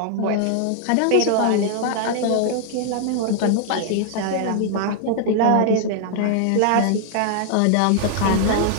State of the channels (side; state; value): both; different; correlation -0.01